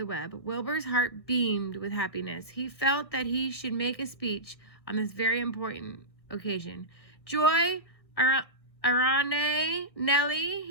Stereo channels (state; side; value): late; right; 1.4 ms